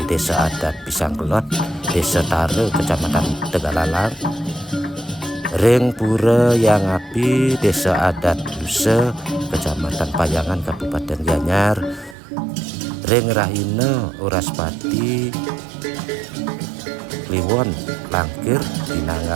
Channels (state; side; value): drops out; left; at 12.2 s